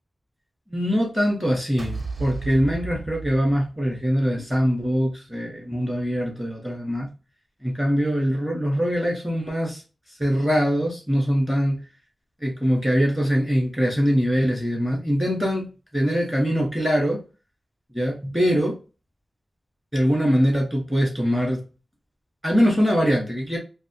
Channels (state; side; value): normal; both; correlation 0.96